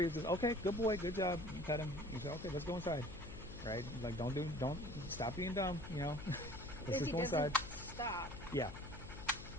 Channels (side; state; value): left; noise; hum, 12 dB below the sound